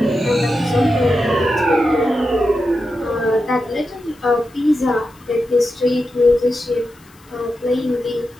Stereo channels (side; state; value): left; noise; hiss, 29 dB below the sound